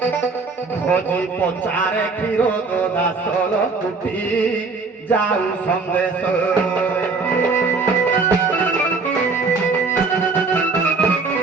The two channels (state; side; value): quieter; left; 4.2 dB